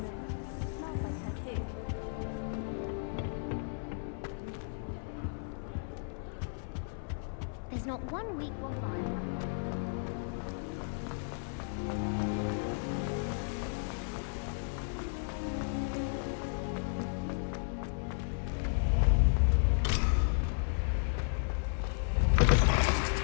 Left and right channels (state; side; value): silent; right; 55 dB below the other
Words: Smells like her too. There's not one week gone by.